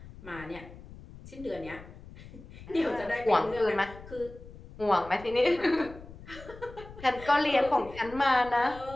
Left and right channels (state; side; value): noise; left; rumble, 17 dB below the sound